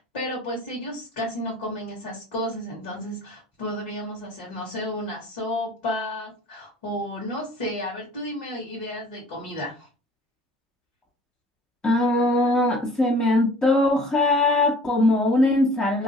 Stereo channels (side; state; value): both; normal; correlation 0.49